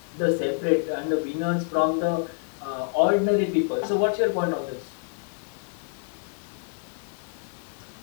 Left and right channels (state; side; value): quieter; right; 39.6 dB